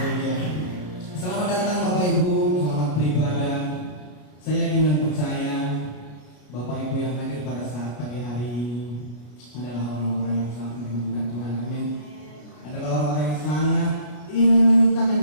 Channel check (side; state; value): right; late; 33 ms